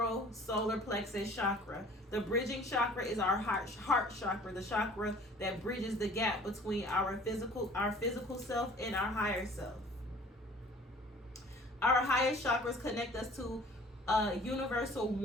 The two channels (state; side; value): normal; both; correlation 0.50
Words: solar plexus chakra. The bridging chakra is our heart chakra, the chakra that bridges the gap between our physical self and our higher self. Our highest chakras connect us to universal